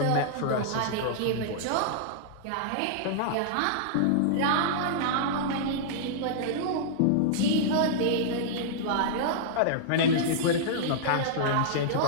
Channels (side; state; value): both; different; correlation -0.02